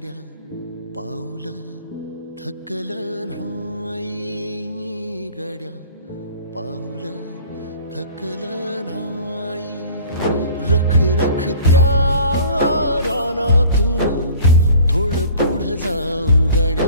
पाऊल थकलं नाही गड्या, पाऊल थकलं नाही. रख रख त्या रानातून थोडं पुढं जाऊ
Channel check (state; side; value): inverted; both; correlation -0.46